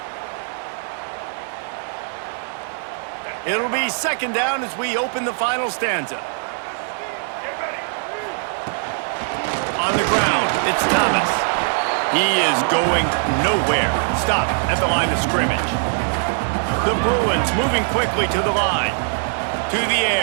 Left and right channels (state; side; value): silent; left; 60 dB below the other